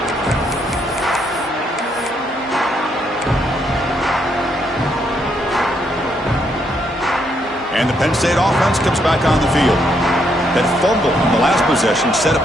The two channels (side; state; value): both; normal; correlation 0.75